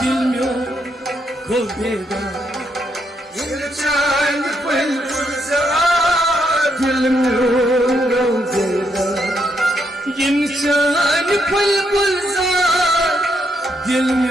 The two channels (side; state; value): both; normal; correlation 0.77